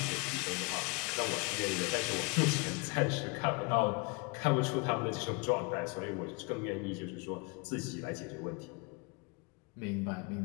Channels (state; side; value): quieter; right; 28.7 dB